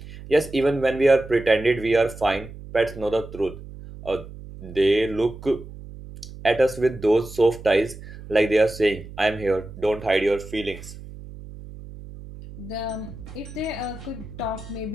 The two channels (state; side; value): noise; right; hum, 15 dB below the sound